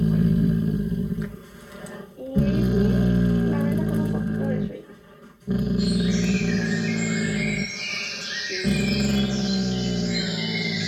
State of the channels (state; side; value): identical; both; correlation 1.00